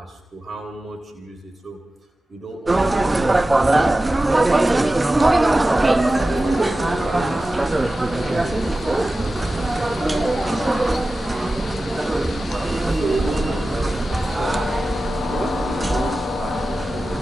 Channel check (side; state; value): both; normal; correlation 0.95